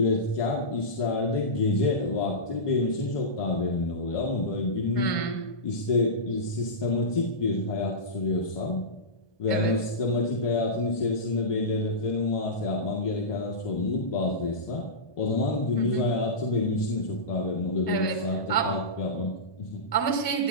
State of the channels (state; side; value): late; right; 1.2 ms